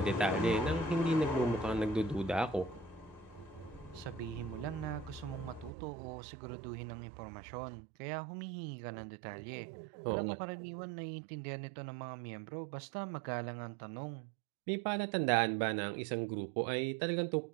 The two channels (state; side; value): drops out; left; at 5.7 s